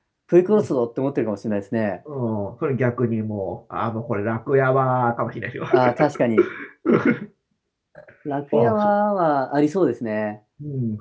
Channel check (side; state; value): both; identical; correlation 1.00